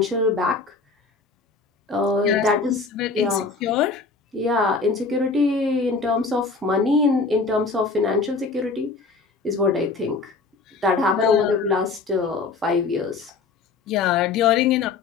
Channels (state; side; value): quieter; right; 4.3 dB